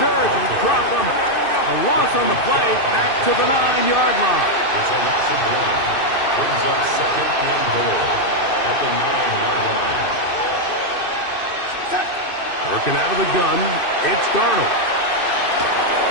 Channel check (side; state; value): right; late; 2.6 ms